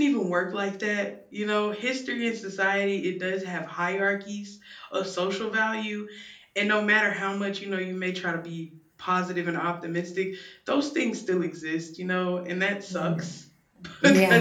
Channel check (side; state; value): both; identical; correlation 1.00